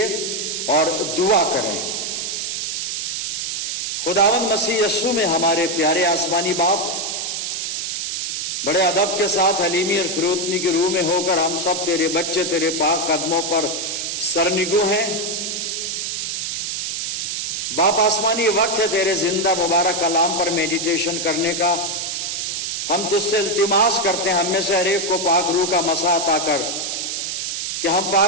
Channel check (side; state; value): right; noise; hiss, 2 dB below the sound